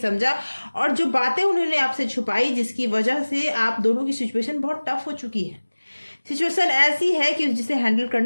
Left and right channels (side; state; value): both; inverted; correlation -1.00